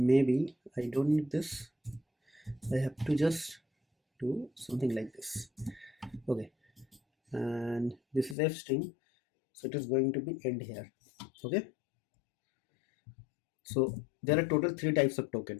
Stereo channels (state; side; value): drops out; right; at 8.3 s